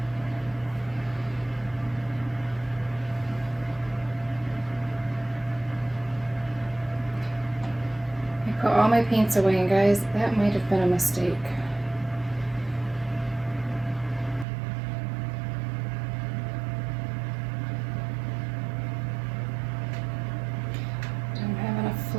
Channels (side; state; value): left; drops out; at 14.5 s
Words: I put all my paints away, and guys, that might have been a mistake. Don't have enough